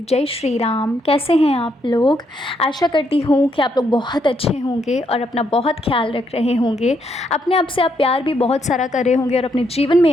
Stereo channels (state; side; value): normal; both; correlation 0.76